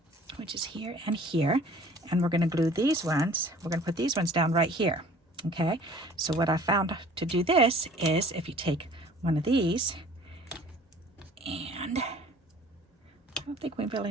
which is here and here, and we're gonna glue these ones. We're gonna put these ones down right here, okay? So what I found to do this is if you take one of these, and I don't think we really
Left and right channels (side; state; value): both; normal; correlation 0.50